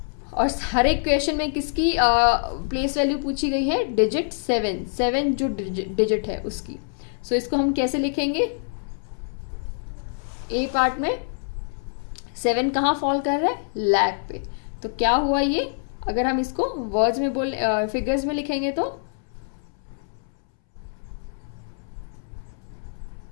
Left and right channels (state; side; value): silent; right; 62 dB below the other